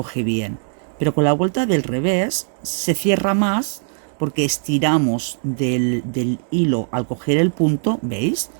bien, pero con la vuelta del revés se cierra más porque estiramos del hilo al coger el punto, ¿veis?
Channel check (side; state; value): left; silent; digital silence